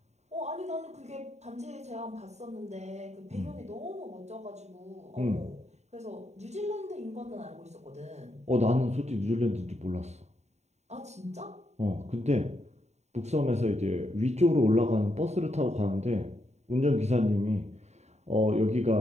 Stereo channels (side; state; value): left; late; 0.32 ms